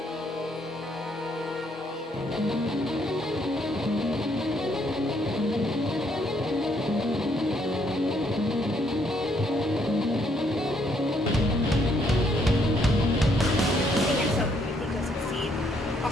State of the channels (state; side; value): normal; both; correlation 0.70